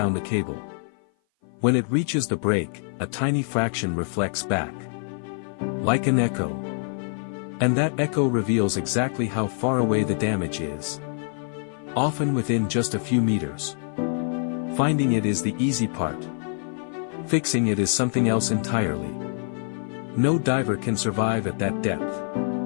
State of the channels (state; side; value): silent; right; 56 dB below the other